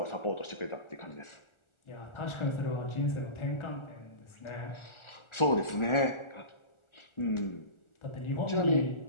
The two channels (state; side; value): late; right; 1.4 ms